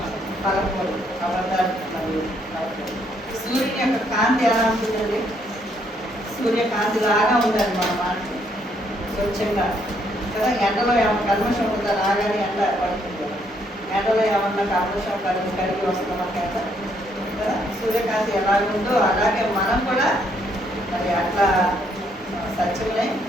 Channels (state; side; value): normal; both; correlation 0.71